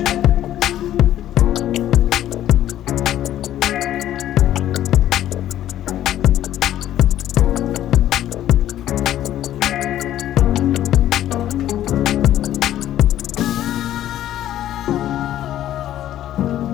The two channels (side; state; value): right; quieter; 12.4 dB